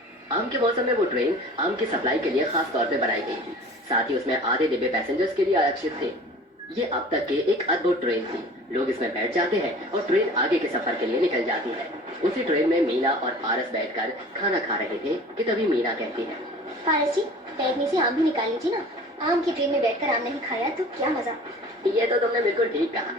आम के मौसम में वो ट्रेन आम की सप्लाई के लिए खास तौर पे बनाई गई थी। साथ ही उसमें आधे डिब्बे पैसेंजर्स के लिए आरक्षित थे। ये अब तक के एक अद्भुत ट्रेन थी। लोग इसमें बैठ जाते हैं और ट्रेन आगे के सफर के लिए निकल जाती है। उसी ट्रेन में मीना और पारस बैठकर खाना खा रहे थे कि तभी मीना कहती है, पारस जी, बैठने से आम भी निकाल लीजिए ना। आम की ट्रेन में बैठकर आम नहीं खाया तो क्या मजा। ये तो तुमने बिल्कुल ठीक कहा।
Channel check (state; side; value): normal; both; correlation 0.44